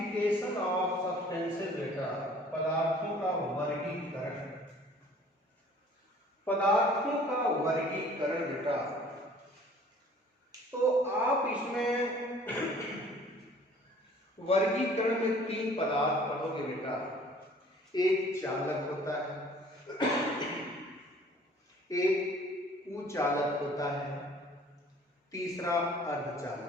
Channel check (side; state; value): both; normal; correlation 0.52